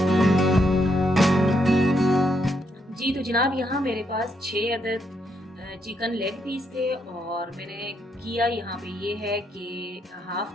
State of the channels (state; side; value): normal; both; correlation 0.77